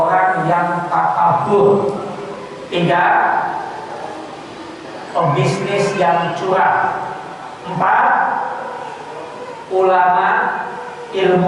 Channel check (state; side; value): identical; both; correlation 1.00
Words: yang takabur. 3 pebisnis yang curang. 4 ulama,